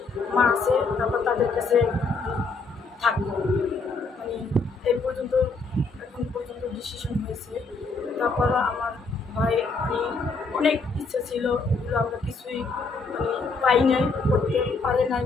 মা আছে, তারপর তাদের কাছে থাকবো। এই পর্যন্ত এখন পর্যন্ত ডিসিশন হয়েছে। তারপরও আমার ভাই অনেক ইচ্ছা ছিল, এগুলো আমরা কিছুই পাই নাই, করতে পারে নাই।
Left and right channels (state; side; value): quieter; right; 4.0 dB